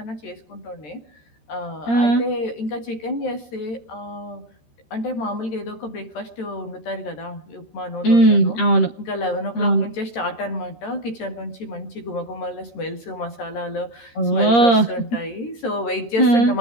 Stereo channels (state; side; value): late; right; 13 ms